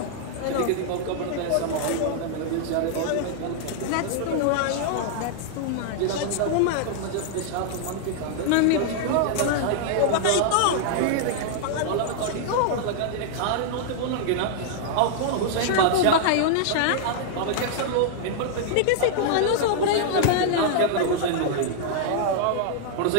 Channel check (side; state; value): both; different; correlation -0.01